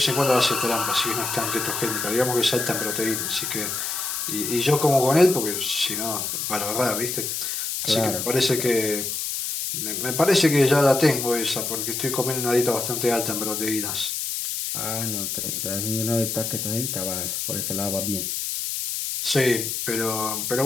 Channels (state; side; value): noise; left; hiss, 3 dB below the sound